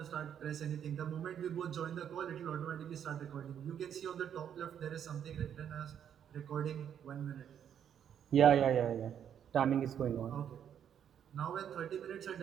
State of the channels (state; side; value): quieter; left; 9.0 dB